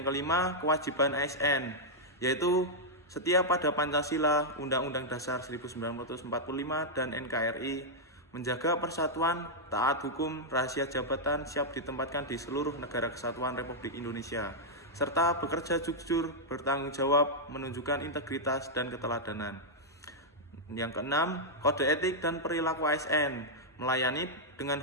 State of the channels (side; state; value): both; normal; correlation -0.06